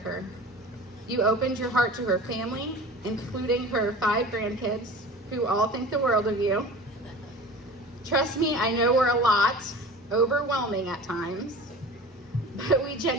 her. You opened your heart to her family, including her 5 grandkids, who all think the world of you. Trust me, I know we're a lot, overwhelming at times, but we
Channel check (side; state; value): both; normal; correlation 0.38